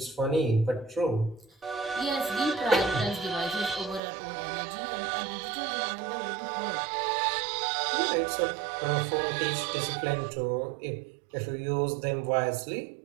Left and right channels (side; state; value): left; drops out; at 4.0 s